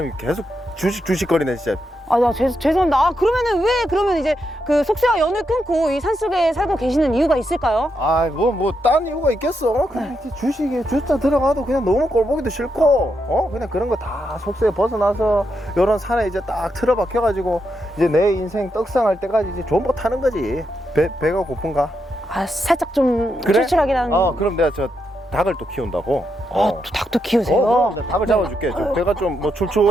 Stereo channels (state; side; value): normal; both; correlation 0.83